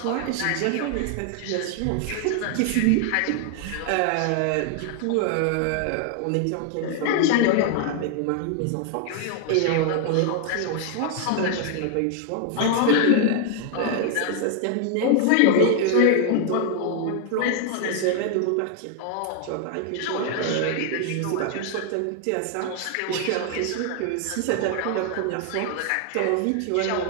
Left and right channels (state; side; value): different; both; correlation 0.00